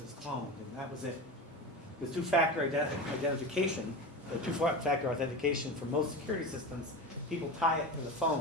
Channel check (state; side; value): normal; both; correlation 0.26